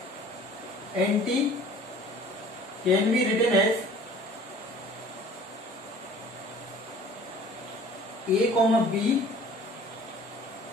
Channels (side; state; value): both; normal; correlation 0.49